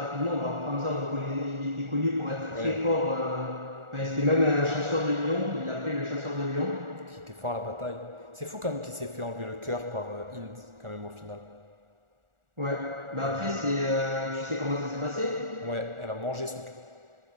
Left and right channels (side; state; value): left; late; 1.4 ms